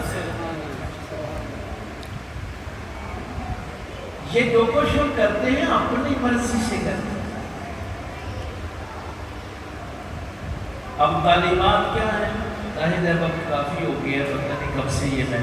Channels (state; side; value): identical; both; correlation 1.00